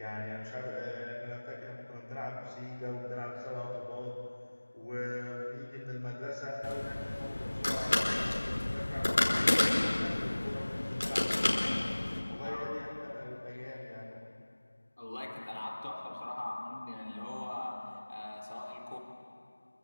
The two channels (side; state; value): both; inverted; correlation -1.00